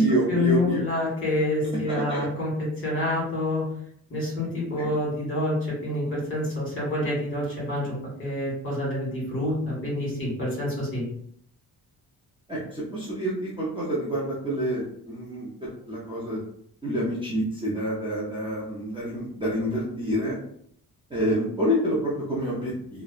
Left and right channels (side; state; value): both; normal; correlation 0.31